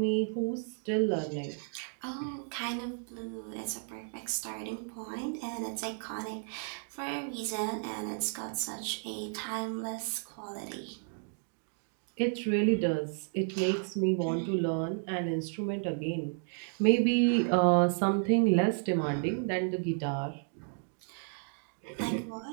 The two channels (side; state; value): left; silent; 56 dB below the other